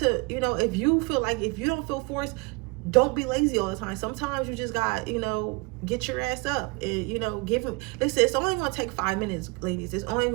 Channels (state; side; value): quieter; left; 28.5 dB